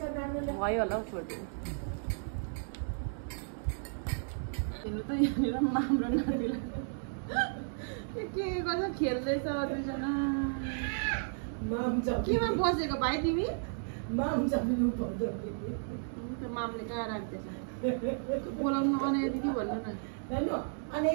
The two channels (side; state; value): left; silent; digital silence